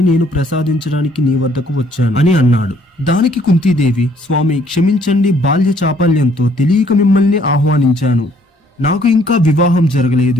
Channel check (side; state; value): both; normal; correlation 0.63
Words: నేను ప్రసాదించడానికి నీ వద్దకు వచ్చాను అని అన్నాడు. దానికి కుంతీదేవి, స్వామి క్షమించండి, బాల్య చాపల్యంతో తెలియక మిమ్మల్ని ఆహ్వానించాను. నాకు ఇంకా వివాహం జరగలేదు.